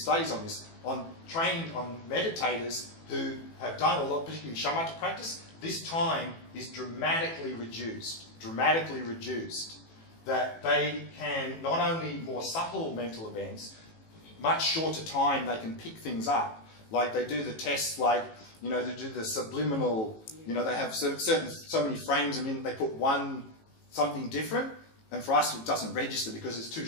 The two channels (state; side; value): late; right; 18 ms